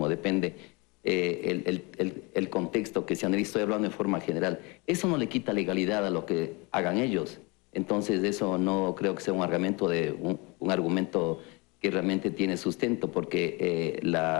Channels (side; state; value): right; quieter; 27.7 dB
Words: depende el contexto que se analiza. Estoy hablando en forma general. Eso no le quita legalidad a lo que hagan ellos. Entonces, eso no creo que sea un argumento que realmente tiene sustento, porque